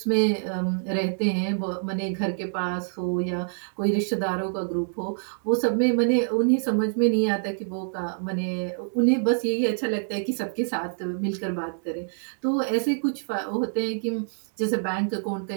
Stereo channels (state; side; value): silent; left; digital silence